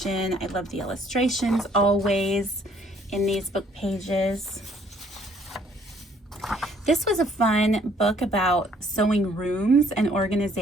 I love the illustrations always in these book pages. This was a fun book about sewing rooms and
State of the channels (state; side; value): normal; both; correlation 0.62